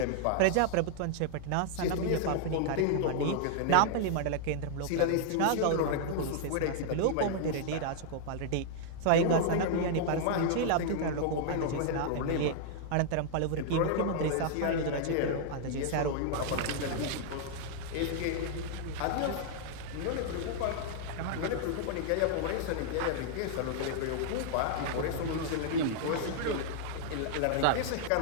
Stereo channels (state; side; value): different; both; correlation -0.01